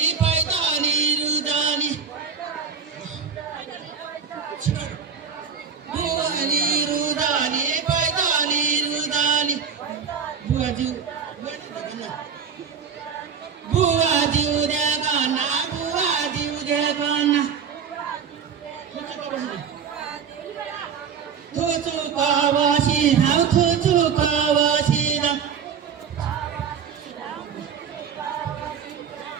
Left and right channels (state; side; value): quieter; left; 6.8 dB